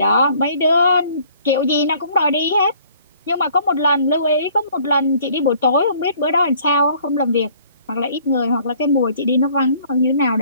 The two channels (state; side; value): inverted; both; correlation -0.57